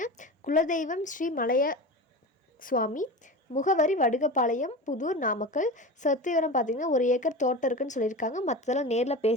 குலதெய்வம் ஸ்ரீ மலைய சுவாமி. முகவரி வடுகப்பாளையம், புதூர், நாமக்கல். சொத்து விவரம் பார்த்திங்கன்னா 1 ஏக்கர் தோட்டம் இருக்குன்னு சொல்லியிருக்காங்க. மற்றதெல்லாம் நேரில்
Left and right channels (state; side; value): normal; both; correlation 0.28